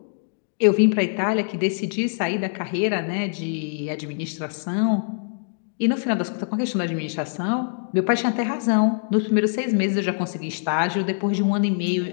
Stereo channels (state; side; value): silent; right; digital silence